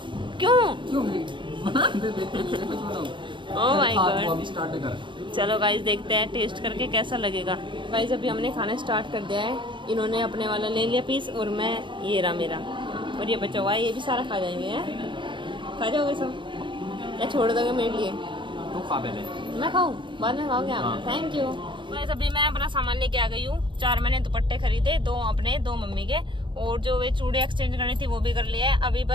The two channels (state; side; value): late; left; 0.23 ms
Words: क्यों? Oh my God. अभी स्टार्ट कर। चलो गाइस देखते हैं टेस्ट करके कैसा लगेगा। गाइस अभी हमने खाना स्टार्ट कर दिया है। इन्होंने अपने वाला ले लिया पीस और मैं ये रहा मेरा, और ये बचा हुआ है, ये भी सारा खा जाएंगे हैं। खा जाओगे सब या छोड़ दोगे मेरे लिए? तो खा पहले। मैं खाऊं? बाद में खाओगे आप? हाँ। Thank you. गाइस अभी मैं अपना सामान लेके आ गई हूँ। 4 मैंने दुपट्टे खरीदे, 2 अपने 2 मम्मी के, और जो वे चूड़े एक्सचेंज करनी थी वो भी कर लिया है। अभी